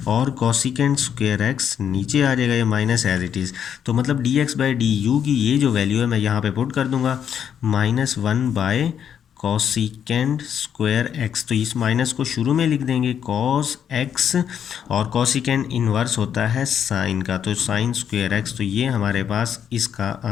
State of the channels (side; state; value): right; quieter; 8.6 dB